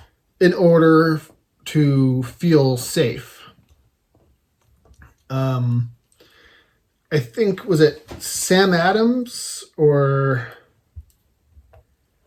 in order to feel safe. I think, was it Sam Adams or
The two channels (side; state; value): both; identical; correlation 1.00